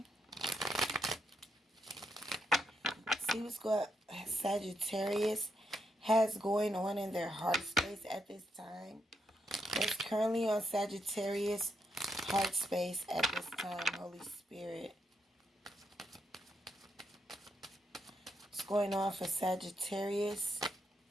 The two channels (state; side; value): normal; both; correlation 0.80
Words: See what's going Sagittarius has going on in their heart space at this time. What's currently on Sagittarius heart space at this time, Holy Spirit? What's going on for Sagittarius?